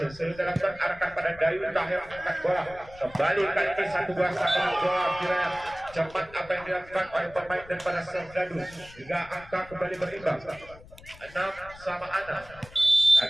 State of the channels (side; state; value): left; noise; rumble, 20 dB below the sound